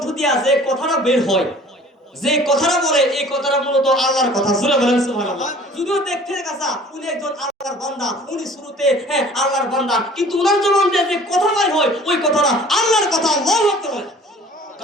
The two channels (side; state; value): both; normal; correlation 0.49